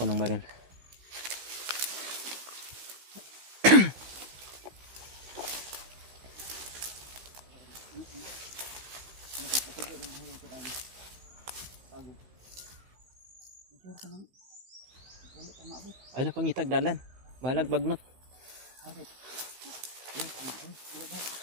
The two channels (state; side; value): late; left; 16 ms